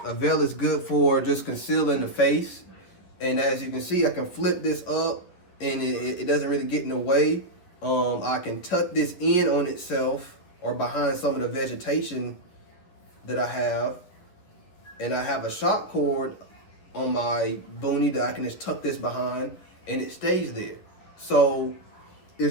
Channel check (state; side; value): late; right; 11 ms